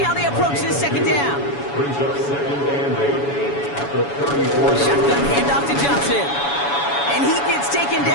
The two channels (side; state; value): right; late; 7.1 ms